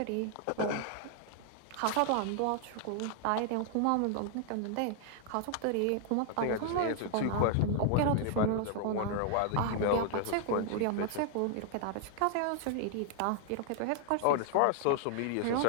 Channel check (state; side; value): different; both; correlation 0.00